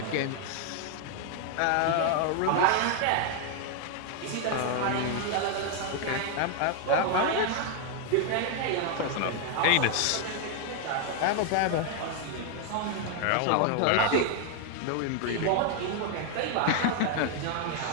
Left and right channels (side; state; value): both; different; correlation 0.00